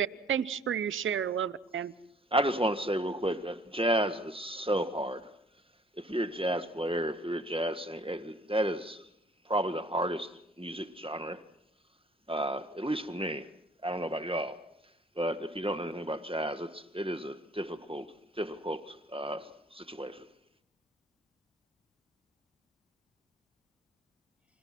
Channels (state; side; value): normal; both; correlation 0.56